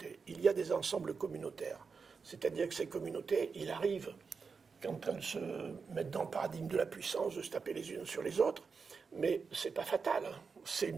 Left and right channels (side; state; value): left; quieter; 5.2 dB